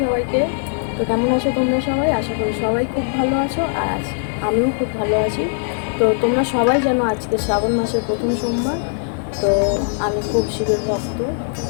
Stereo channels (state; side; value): silent; right; digital silence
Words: সবাইকে। তো কেমন আছো তোমরা সবাই? আশা করি সবাই খুব ভালো আছো, আর আমিও খুব ভালো আছি। তো তোমরা সবাই জানো আজকে শ্রাবণ মাসের প্রথম সোমবার। তো আমি খুব শিবের ভক্ত,